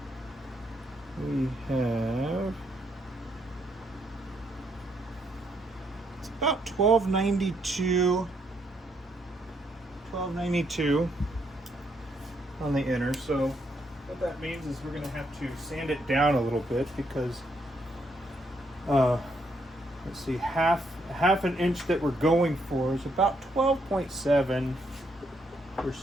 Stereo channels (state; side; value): normal; both; correlation 0.74